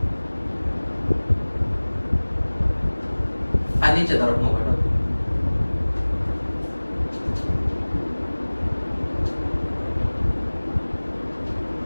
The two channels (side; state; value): both; inverted; correlation -1.00